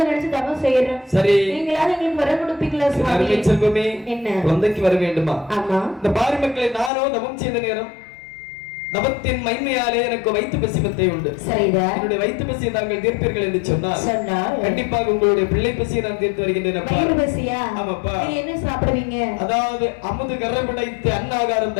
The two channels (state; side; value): drops out; right; at 6.9 s